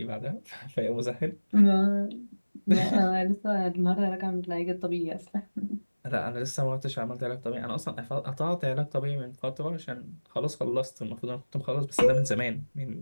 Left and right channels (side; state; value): both; inverted; correlation -1.00